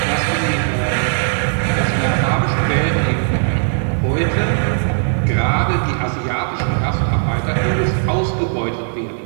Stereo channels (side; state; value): left; silent; 68 dB below the other